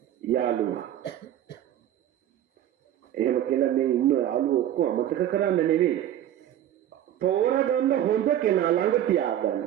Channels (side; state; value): left; quieter; 11.6 dB